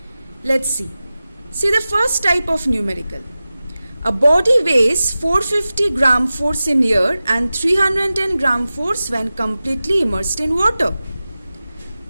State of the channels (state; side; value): inverted; both; correlation -0.96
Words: Let's see. See the first type of numerical. A body weighs 450 gram force in air and 310 gram force when completely immersed in water.